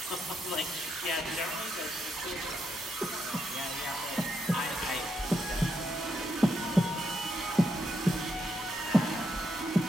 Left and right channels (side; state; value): both; normal; correlation 0.80